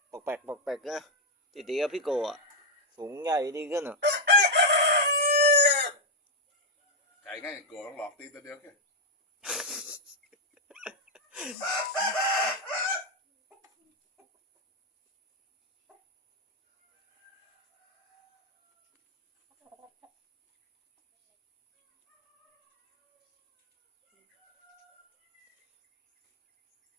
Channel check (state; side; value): normal; both; correlation 0.00